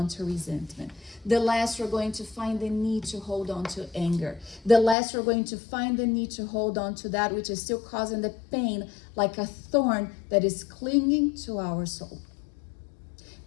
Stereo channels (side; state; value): right; drops out; at 5.0 s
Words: to resentment. The less we're going to find the need to hold on to anger. The less we're going to find the need to hold on to that which is still causing the pain like a thorn that is clinging to our soul.